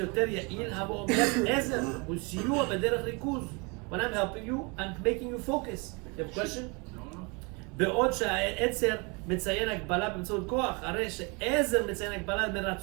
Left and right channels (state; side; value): quieter; left; 30.3 dB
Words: יעיל, הבא אומר עזר וסיוע בדרך ריכוז. When I'm helping you, I'm making you focus. You have a question? בעוד שהעצר מציין הגבלה באמצעות כוח, הרי שעזר מציין הגבלה